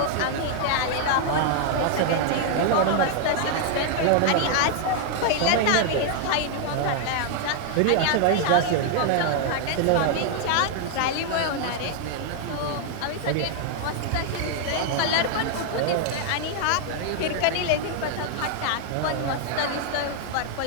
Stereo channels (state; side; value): different; both; correlation 0.00